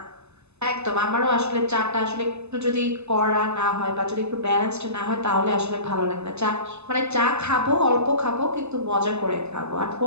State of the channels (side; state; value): left; late; 0.81 ms